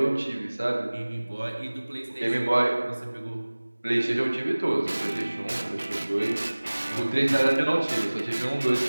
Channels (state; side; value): inverted; both; correlation -1.00